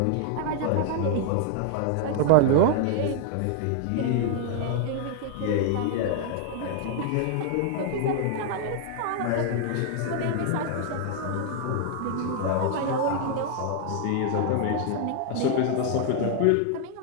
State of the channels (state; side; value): different; both; correlation 0.00